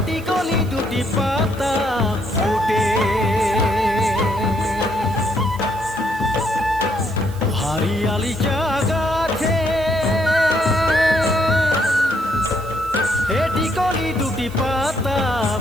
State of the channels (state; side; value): noise; right; hiss, 21 dB below the sound